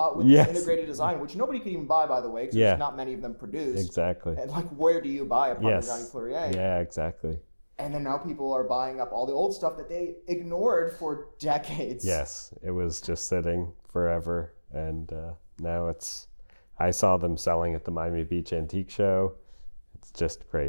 with this integrated design, which nobody could even buy, by the way, because there's not many of them produced. Exactly. And like, where do you buy a Parmigiani Fleurier? Yeah, exactly. And then now people are buying up all the old stuff that they ignored for decades. Yes, it was just sitting forever. And now I saw them selling at the Miami Beach Antique Show. It's just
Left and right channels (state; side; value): inverted; both; correlation -1.00